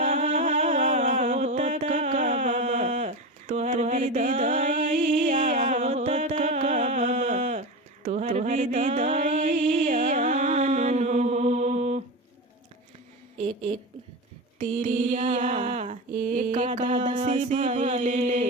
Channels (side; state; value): both; normal; correlation 0.22